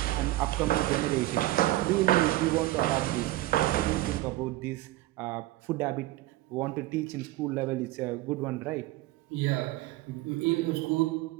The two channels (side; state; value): left; quieter; 17.0 dB